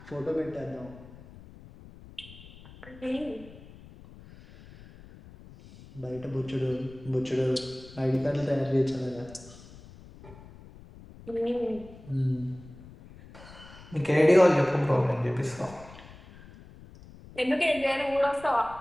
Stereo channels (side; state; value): left; noise; rumble, 19 dB below the sound